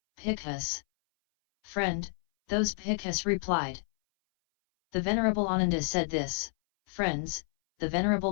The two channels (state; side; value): silent; right; 58 dB below the other